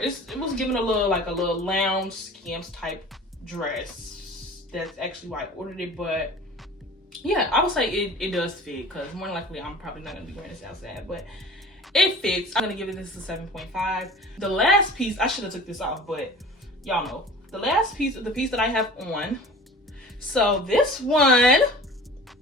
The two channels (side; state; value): both; normal; correlation 0.41